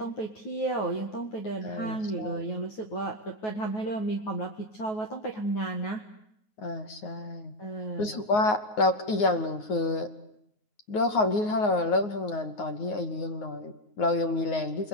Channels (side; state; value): right; late; 9.5 ms